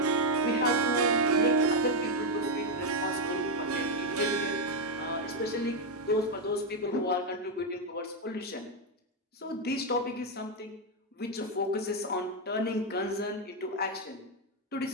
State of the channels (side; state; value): both; normal; correlation 0.03